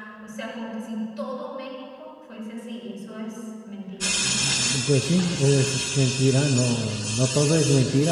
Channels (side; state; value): both; identical; correlation 1.00